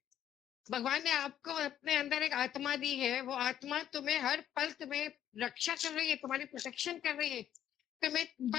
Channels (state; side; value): quieter; right; 10.7 dB